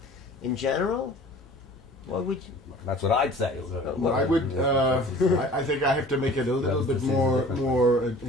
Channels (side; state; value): both; normal; correlation 0.45